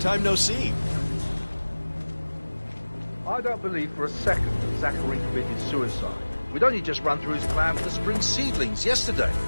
no see. I don't believe for a second that Zachary committed suicide. We'd only just run through his plan for the spring seedlings yesterday.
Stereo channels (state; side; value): inverted; both; correlation -1.00